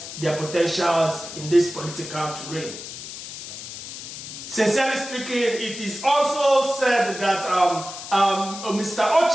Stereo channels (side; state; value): left; noise; hiss, 10 dB below the sound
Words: their potentials in this political terrain. Sincerely speaking, it is also said that Mr.